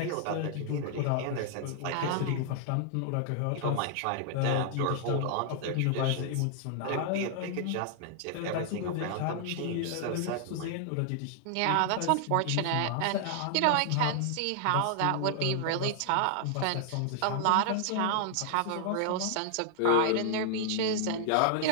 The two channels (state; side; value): different; both; correlation 0.00